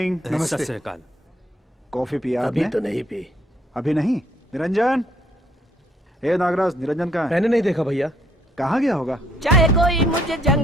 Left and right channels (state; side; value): normal; both; correlation 0.68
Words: नमस्ते। सत श्री अकाल। कॉफी पिया अभी आपने? तो नहीं पी। अभी नहीं? निरंजन, ए नागराज, निरंजन कहाँ है? मैंने नहीं देखा भैया। कहाँ गया होगा? चाहे कोई मुझे